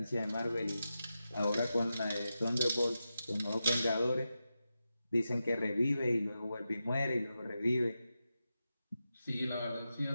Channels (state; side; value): inverted; both; correlation -0.90